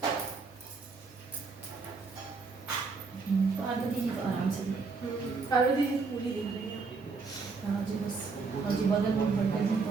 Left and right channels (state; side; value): quieter; left; 4.5 dB